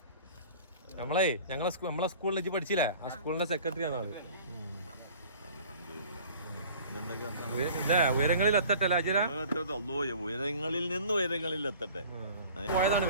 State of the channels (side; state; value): both; inverted; correlation -0.46